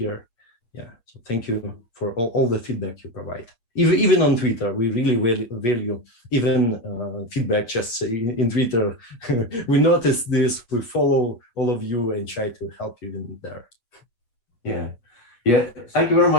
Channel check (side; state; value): right; late; 8.3 ms